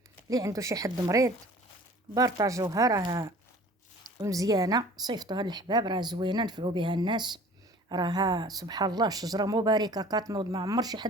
اللي عنده شي حد مريض بارطاجوها، راها مزيانه، صيفطوها للحباب، راها زوينه، نفعوا بها الناس. راها سبحان الله شجره مباركه كتنوض، ما عمر شي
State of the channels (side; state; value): both; normal; correlation 0.47